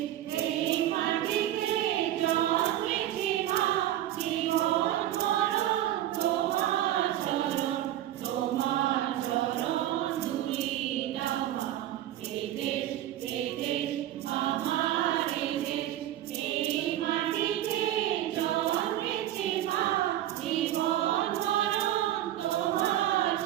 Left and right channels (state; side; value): quieter; left; 12.8 dB